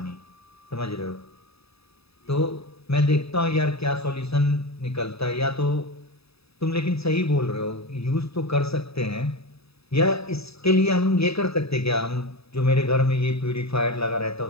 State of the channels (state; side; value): late; right; 0.78 ms